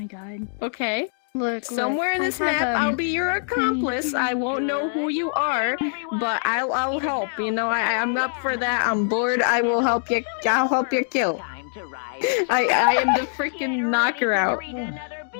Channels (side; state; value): right; silent; digital silence